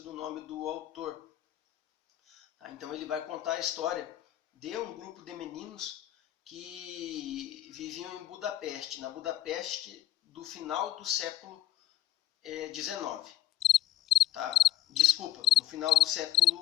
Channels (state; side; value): quieter; right; 12.8 dB